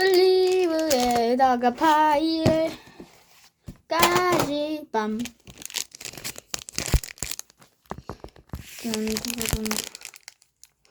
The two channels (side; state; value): both; identical; correlation 1.00